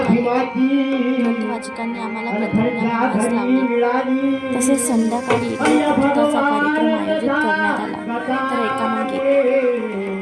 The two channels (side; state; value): both; identical; correlation 1.00